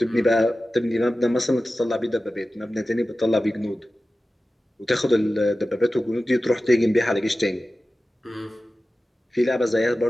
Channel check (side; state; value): both; normal; correlation 0.95